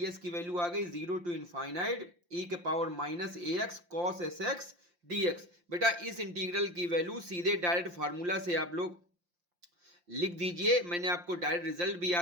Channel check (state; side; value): late; left; 5.7 ms